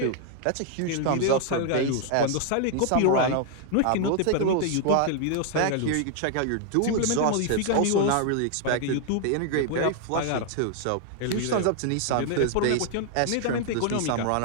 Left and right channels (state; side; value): different; both; correlation 0.00